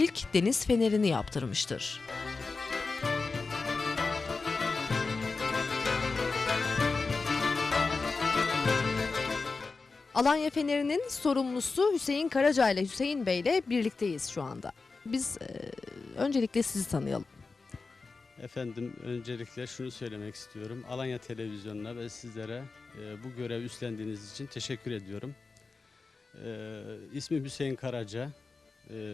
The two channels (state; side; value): quieter; right; 4.1 dB